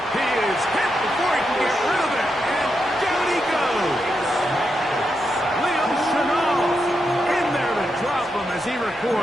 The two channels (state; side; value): normal; both; correlation 0.84